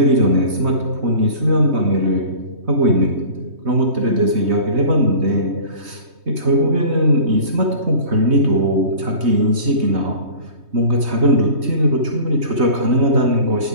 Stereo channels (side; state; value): left; late; 3.2 ms